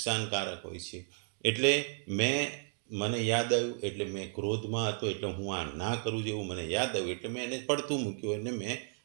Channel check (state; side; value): silent; left; 55 dB below the other